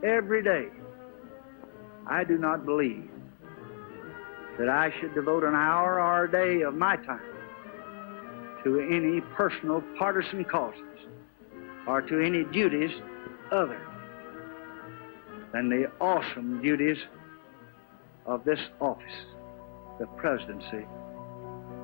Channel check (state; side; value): silent; right; digital silence